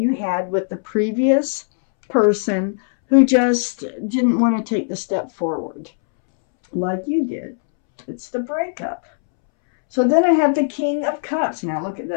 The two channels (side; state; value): right; silent; 66 dB below the other